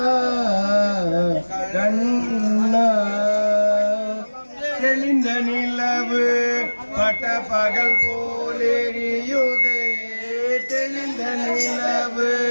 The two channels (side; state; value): both; inverted; correlation -1.00